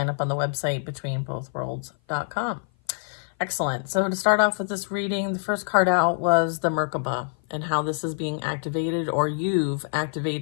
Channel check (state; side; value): silent; right; 56 dB below the other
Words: up on the website betweenbothworlds.com. Excellent. So to start off with this reading, the first card out was the Merkaba and how this is being activated, or you've